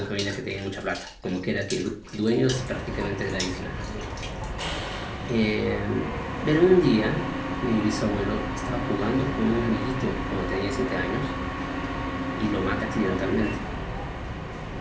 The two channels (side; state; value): both; identical; correlation 1.00